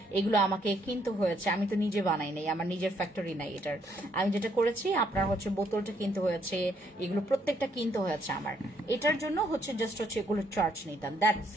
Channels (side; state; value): both; normal; correlation 0.70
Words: এগুলো আমাকে কিনতে হয়েছে, আমি তো নিজে বানাই নাই, আমার নিজের ফ্যাক্টরি নাই এটার। আমি যেটা করেছি আপনার হচ্ছে বোতলটা কিনতে হয়েছে, এগুলো প্রত্যেকটা কিনতে হয়েছে আমার। এটার জন্য হচ্ছে জাস্ট হচ্ছে এগুলো চার্জ নিতাম, দ্যাটস